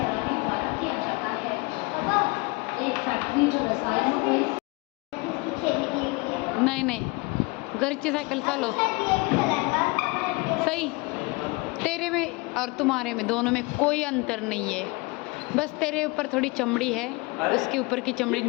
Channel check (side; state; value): right; quieter; 26.1 dB